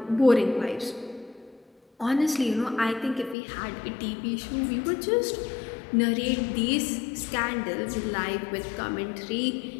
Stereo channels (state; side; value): drops out; right; at 3.4 s